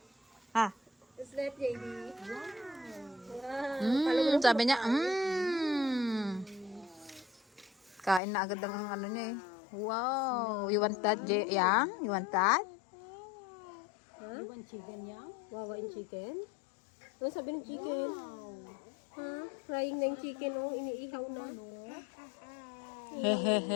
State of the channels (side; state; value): right; drops out; at 8.2 s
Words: Ha? Is that JD? Wow. Sabi niya, Kain na agad ang niya eh. Wow. You want that, Yang? You want that? You want chicken yan? Wawain chicken? Ano sabi ng chicken? Ha? Frying na yung chicken, oh. Iniihaw na.